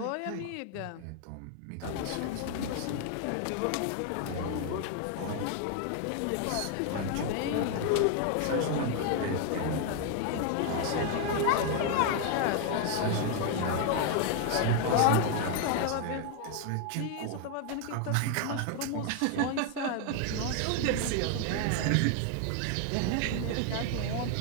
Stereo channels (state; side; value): different; both; correlation 0.01